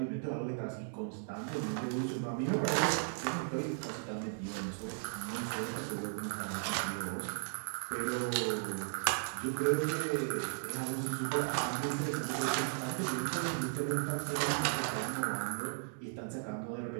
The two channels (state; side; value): silent; left; digital silence